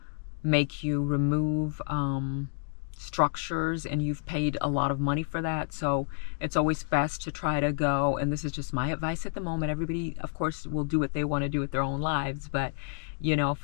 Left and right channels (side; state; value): right; silent; digital silence